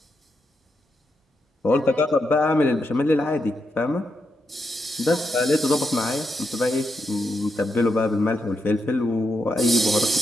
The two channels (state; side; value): normal; both; correlation 0.83